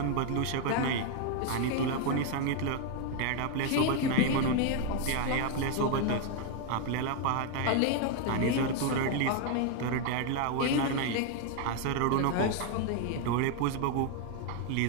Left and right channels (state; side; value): different; both; correlation 0.00